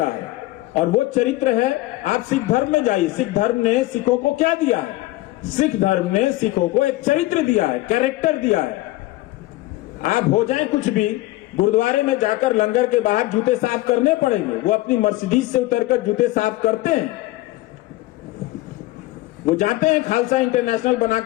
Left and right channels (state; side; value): quieter; right; 18.3 dB